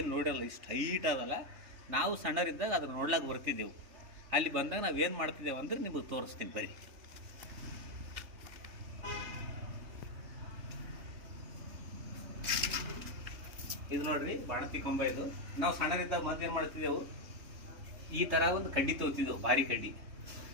ನೋಡಲ್ಲ, ಇಷ್ಟು ಹೈಟ್ ಅದಲ್ಲ. ನಾವು ಸಣ್ಣರಿದ್ದಾಗ ಅದನ್ನು ನೋಡ್ಲಾಕ ಬರ್ತಿದ್ದೆವು. ಅಲ್ಲಿ ಬಂದಾಗ ನಾವೇನು ಮಾಡ್ತಿದ್ದೇವೆ ಅಂದ್ರೆ ನಿಮಗೆ ತೋರಿಸ್ತೀನಿ ಬರೀ. ಇದು ನೋಡ್ರಿ ಬಾಣಂತಿ ಕಂಬ. ಇದು ನಾವು ಸಣ್ಣರಿದ್ದಾಗ ಮತ್ತೇನು ಮಾಡ್ತಿದ್ದೆವು, ಈ ಥರ ಒಂದು ಕಡ್ಡಿ ತಗೋತಿದ್ದೆವು, ಭಾರಿ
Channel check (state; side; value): late; left; 3.1 ms